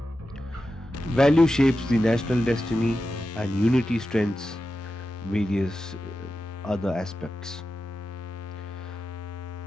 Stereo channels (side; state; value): both; normal; correlation 0.91